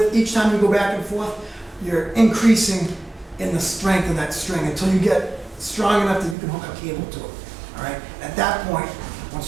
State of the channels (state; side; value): drops out; left; at 6.4 s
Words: each time you go back and forth, you're increasing in the strength of that string until you get strong enough that you can hook a cable to it. All right. At that point,